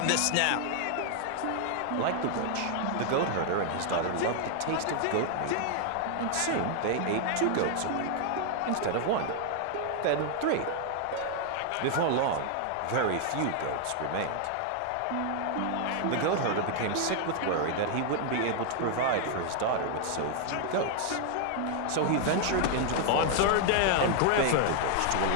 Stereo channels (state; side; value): different; both; correlation 0.00